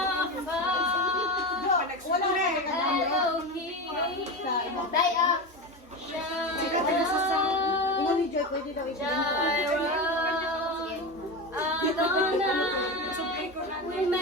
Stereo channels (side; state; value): both; normal; correlation 0.21